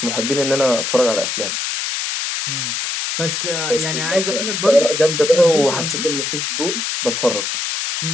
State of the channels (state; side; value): noise; left; hiss, 2 dB below the sound